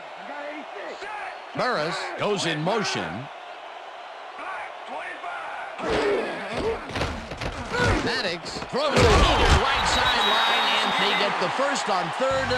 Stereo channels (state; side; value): identical; both; correlation 1.00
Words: Burris goes in motion. Maddox throws it to the right sideline, and they get the first on 3rd